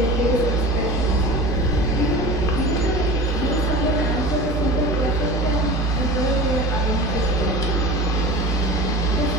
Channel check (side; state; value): both; normal; correlation 0.34